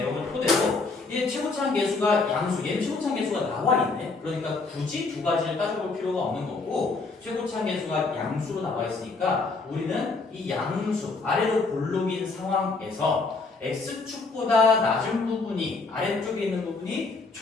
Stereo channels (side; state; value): right; quieter; 3.9 dB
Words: 토대로 얘 최고차항 계수가 양수, 얘는 최고차항 계수가 나와 있네. 그러니까 굳이 두 가지를 따져볼 필요가 없는 거고 최고차항 계수가 양수로 나와 있으니까 우리는 이 양수 아래로 볼록인 상황에서 x축보다 낮은 부분이 아래쪽에 있는 부분이